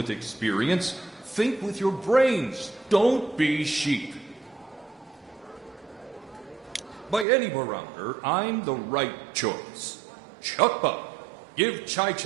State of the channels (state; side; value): drops out; left; at 7.2 s